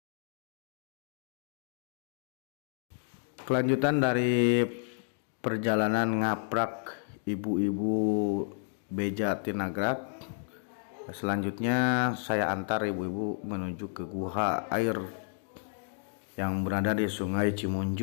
Kelanjutan dari perjalanan ngaprak ibu-ibu beja Tinagrak. Selanjutnya saya antar ibu-ibu menuju ke guha air yang berada di Sungai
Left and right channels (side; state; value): right; silent; digital silence